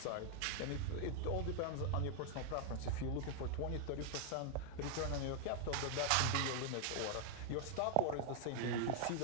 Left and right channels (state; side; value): different; both; correlation 0.00